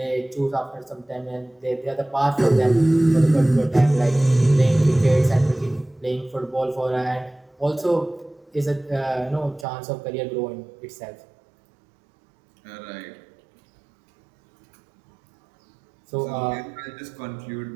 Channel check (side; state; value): left; drops out; at 9.7 s